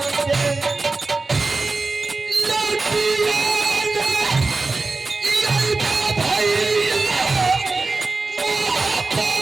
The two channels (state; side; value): quieter; left; 3.7 dB